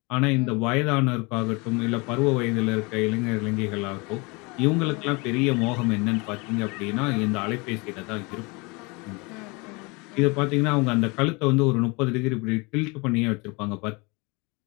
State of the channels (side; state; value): right; quieter; 27.7 dB